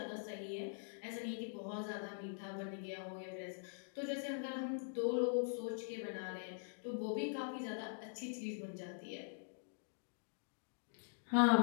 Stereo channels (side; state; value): right; silent; digital silence